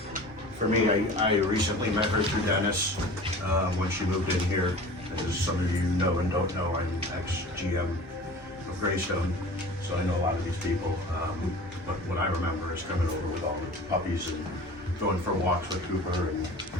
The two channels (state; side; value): normal; both; correlation 0.40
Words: For me, I recently met her through Dennis when she moved in here. As some of you know and don't know, I'm ex-GM of Greystone, so I know a lot of these people. But what I remember is coming over with all the puppies and going for walks with Cooper, and